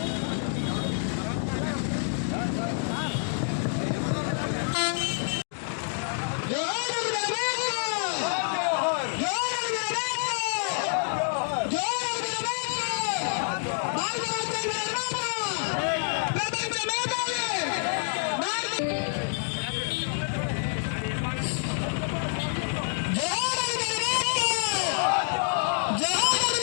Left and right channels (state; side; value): silent; right; digital silence